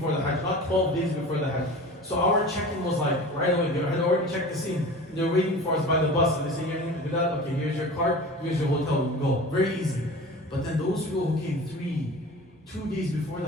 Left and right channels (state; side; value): normal; both; correlation 0.37